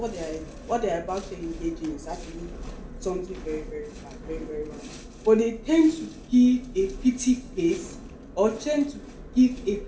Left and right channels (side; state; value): both; identical; correlation 1.00